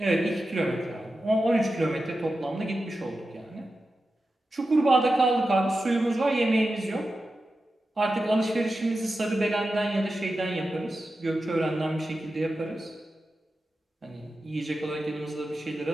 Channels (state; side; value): normal; both; correlation 0.92